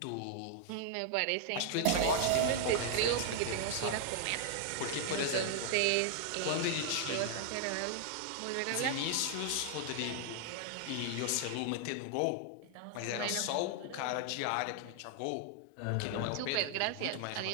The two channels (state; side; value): different; both; correlation 0.00